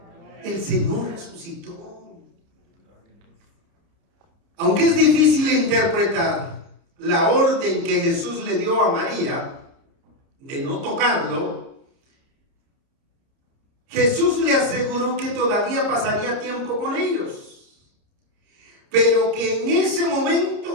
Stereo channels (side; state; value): left; late; 30 ms